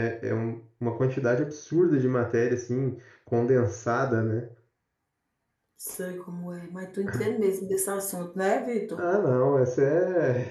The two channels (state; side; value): identical; both; correlation 1.00